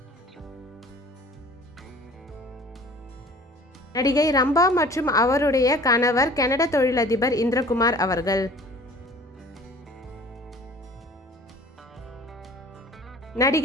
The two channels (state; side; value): normal; both; correlation 0.47